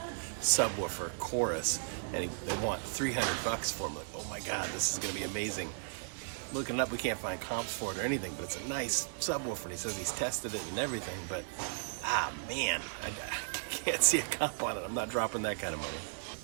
subwoofer chorus, and they want 300 bucks for him. Like, oh my God, this is gonna be amazing. Looking it up, we can't find comps for it or anything, but it's a nice subwoofer, and he says he's tested it and everything, but man, I can't see a comp on it. I'm not dropping that kind of money.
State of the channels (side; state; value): left; silent; 54 dB below the other